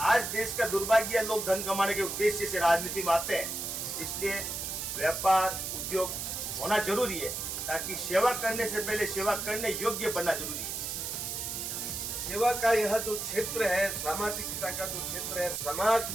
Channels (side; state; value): right; noise; hiss, 4 dB below the sound